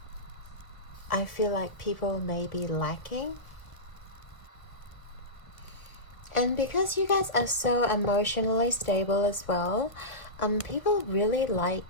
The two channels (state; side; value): late; right; 1.3 ms